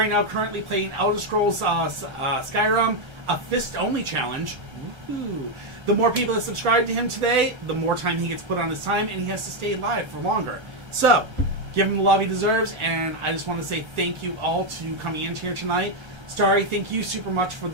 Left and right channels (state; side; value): late; left; 1.4 ms